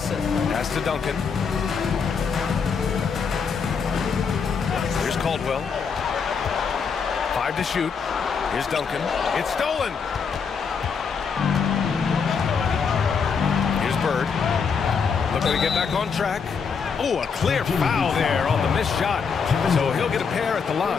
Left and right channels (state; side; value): quieter; right; 5.9 dB